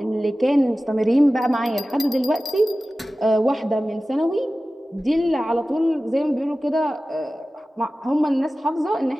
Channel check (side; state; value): both; normal; correlation 0.96